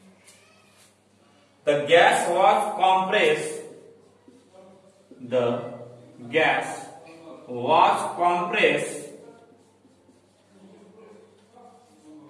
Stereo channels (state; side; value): identical; both; correlation 1.00